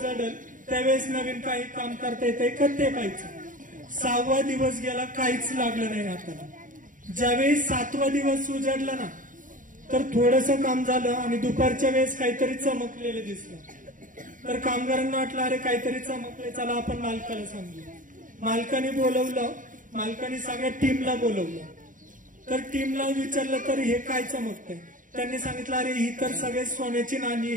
त्यावेळेस नवीन काही काम करता येते का ते पाहायचं. 6वा दिवस गेला, काहीच लागलं नाही हाताला. ज्यावेळेस 7वा दिवस उजाडला ना, तर थोडस काम झालं आणि दुपारच्या वेळेस काहीतरी चमकलेलं दिसलं. तर कामगारांना वाटलं, अरे काहीतरी चमकले, चला आपण मालकाला सांगू. मालकाने बोलवलं, मालकाने सगळ्या टीमला बोलवलं. तर टीमला विचारलं, तर हे काय चमकतंय? त्यांनी सांगितलं, अरे ही तर सगळे सोन्याची नाणी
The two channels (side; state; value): left; late; 0.38 ms